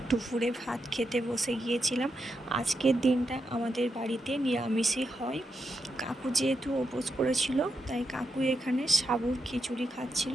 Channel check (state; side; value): normal; both; correlation 0.84